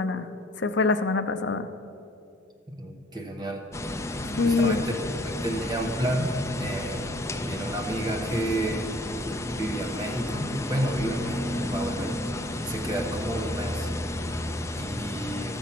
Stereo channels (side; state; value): both; normal; correlation 0.58